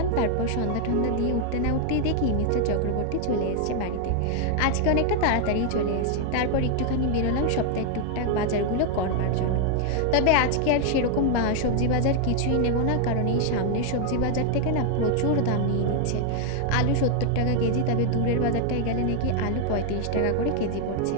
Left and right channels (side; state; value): both; different; correlation 0.00